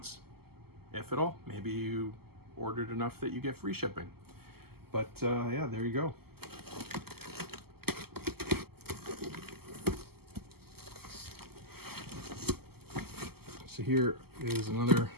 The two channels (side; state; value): left; late; 0.96 ms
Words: if at all. Maybe you ordered enough that you get free shipping. But yeah, there you go. So here is another